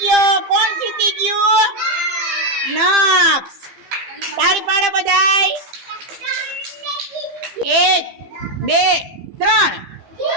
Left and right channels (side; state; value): left; late; 15 ms